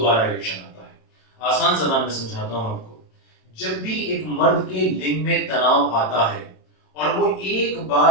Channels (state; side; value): late; right; 27 ms